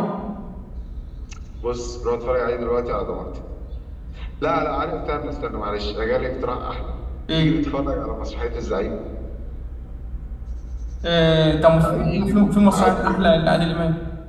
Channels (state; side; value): identical; both; correlation 1.00